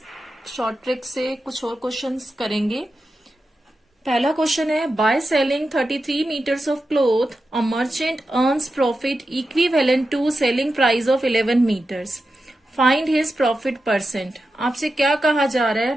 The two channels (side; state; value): both; normal; correlation 0.91